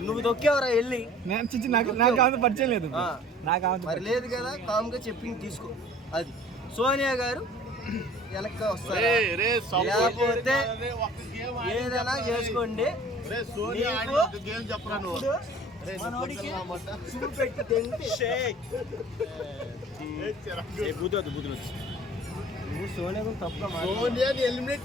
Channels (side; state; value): both; normal; correlation 0.48